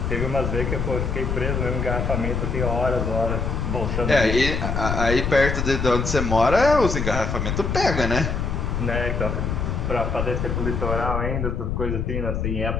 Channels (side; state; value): left; noise; rumble, 1 dB below the sound